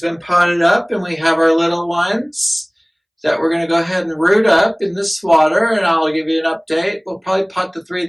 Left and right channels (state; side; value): identical; both; correlation 1.00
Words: been potted up, and we have our little ones that we're going to go ahead and root up in this water, and I'll give you an update. We'll probably pot the three of